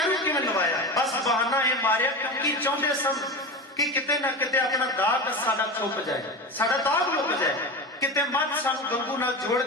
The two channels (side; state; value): both; normal; correlation 0.26